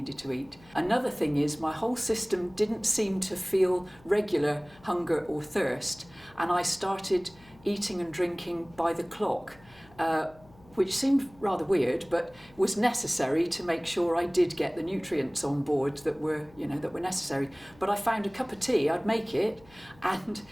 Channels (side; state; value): left; noise; hum, 26 dB below the sound